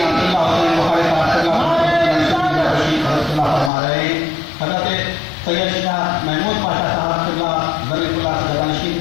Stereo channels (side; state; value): right; drops out; at 3.7 s